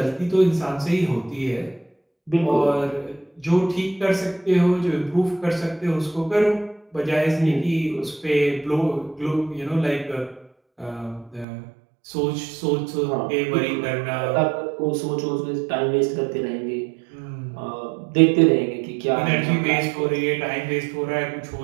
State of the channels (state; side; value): drops out; left; at 11.5 s